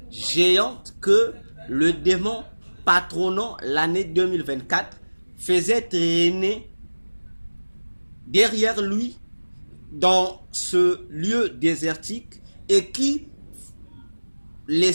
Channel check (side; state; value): both; inverted; correlation -1.00